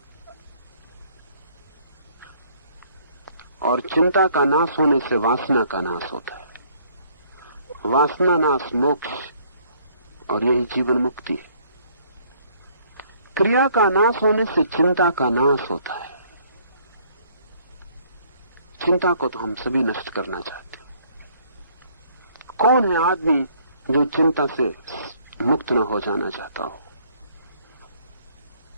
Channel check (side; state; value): both; inverted; correlation -0.62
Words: और चिंता का नाश होने से वासना का नाश होता है। वासना नाश मोक्ष, और यही जीवन मुक्ति है। क्रिया का नाश होने से चिंता का नाश होता है। चिंता को तो हम सभी नष्ट करना चाहते हैं। कौन है आदमी जो चिंता से मुक्त न हो जाना चाहता हो?